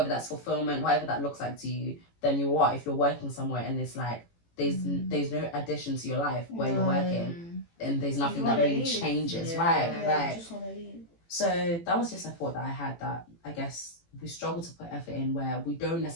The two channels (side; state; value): right; late; 18 ms